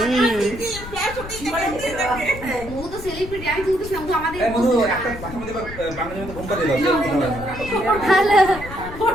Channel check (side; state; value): left; noise; rumble, 12 dB below the sound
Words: ও তো সেলিব্রিটি, আমি কিন্তু শুনবো আমাদের এই মধু একটা বাসার মধ্যে বাঙালির মতো ঘুমটা দিল। হ্যালো